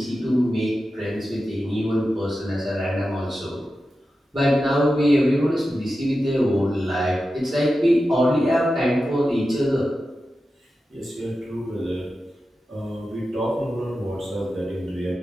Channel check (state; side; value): normal; both; correlation 0.92